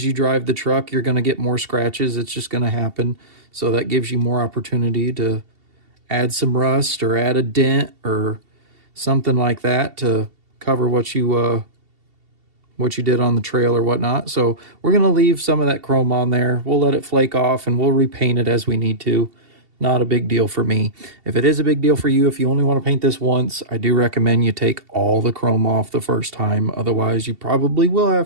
you drive the truck, you're going to get more scratches. It's just going to happen. So that gives you more opportunity to add some rust or add a dent or something like that to cover what you did on the trail or whatnot. So we're going to leave some of that chrome on there. We'll let it flake off and we'll repaint it as we need to. Not a big deal for me. If it is a big deal for you, if you only want to paint this once, I do recommend you take all the chrome off the first time. Otherwise, you probably will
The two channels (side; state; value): left; late; 2.7 ms